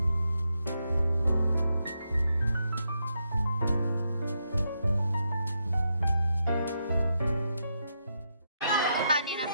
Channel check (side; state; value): both; inverted; correlation -0.82